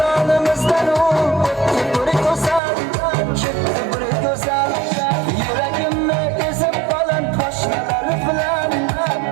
u o'tdi bir go'zal, ketdi bir go'zal, yuragimni ezib baland poshnalar bilan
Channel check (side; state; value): left; drops out; at 2.6 s